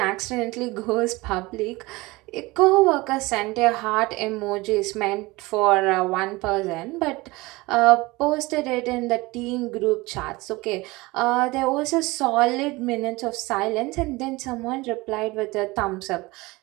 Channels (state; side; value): quieter; left; 22.0 dB